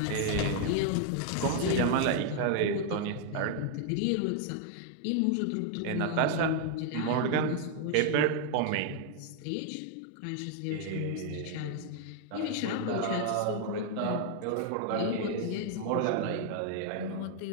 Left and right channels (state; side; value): different; both; correlation 0.00